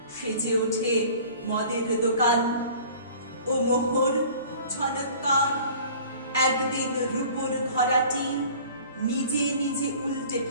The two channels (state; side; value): inverted; both; correlation -0.47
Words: সেজে ওঠে মদের দোকান। ও মোহর ঝনৎকার, একদিন রূপোর ঘরাটি নিজে নিজে উল্টে